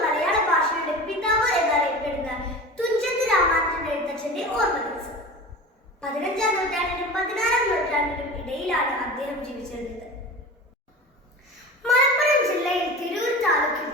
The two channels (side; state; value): both; normal; correlation 0.34